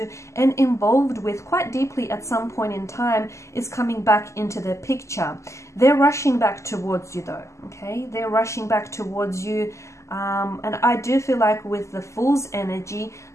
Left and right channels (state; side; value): late; right; 0.14 ms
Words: and involved with quite deeply at some point in time is coming back into the picture. They're rushing back towards you though, okay? They're rushing back towards you. And I do feel like with the Fool's energy,